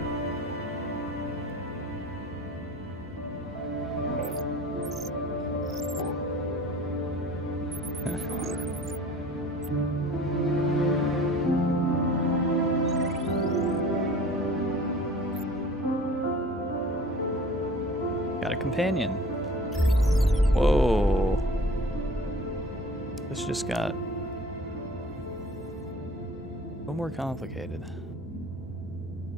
Got a companion. Whoa. This just got a little more complicated.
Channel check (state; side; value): normal; both; correlation 0.44